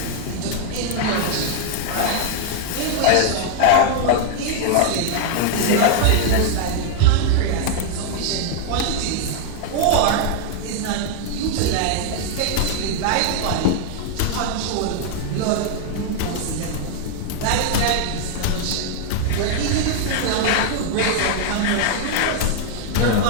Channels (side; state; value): both; different; correlation 0.00